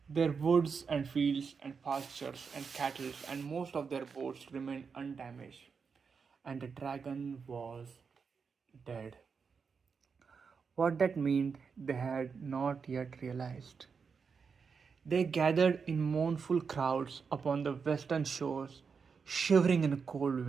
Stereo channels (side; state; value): left; quieter; 5.6 dB